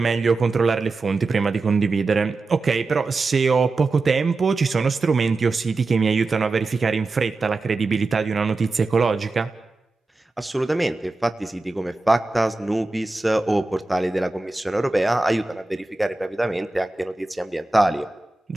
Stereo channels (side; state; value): left; quieter; 3.4 dB